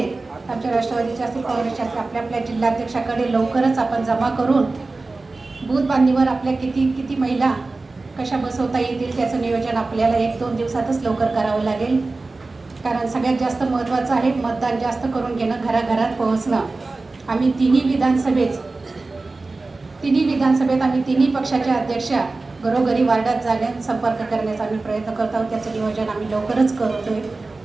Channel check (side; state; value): left; quieter; 3.5 dB